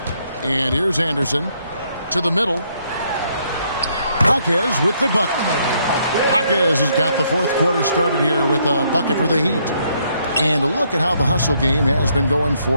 And here's Anderson to the middle. Jaquez with the bucket. Jaquez has got the fourth quarter started here with a bucket for the Heat. And look at how the hustle game has been going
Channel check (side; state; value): both; inverted; correlation -0.71